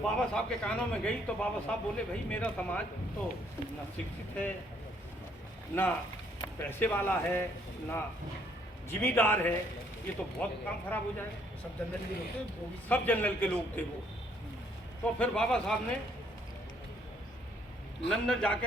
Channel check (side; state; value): both; normal; correlation 0.67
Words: बाबा साहब के कानों में गई तो बाबा साहब बोले भाई मेरा समाज तो ना शिक्षित है, ना पैसे वाला है, ना जिम्मेदार है, ये तो बहुत काम खराब हो जाएगा। सब जनरल के लोग थे वो। तो फिर बाबा साहब ने लंदन जाके